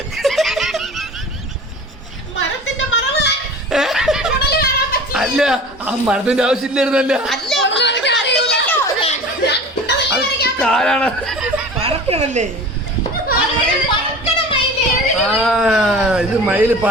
മരത്തിന്റെ മറവ് അല്ല ആ മരത്തിന്റെ ആവശ്യമില്ലായിരുന്നല്ല അത് കാലാണ് പറക്കണല്ലേ ആ ഇത് മയില്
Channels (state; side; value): normal; both; correlation 0.39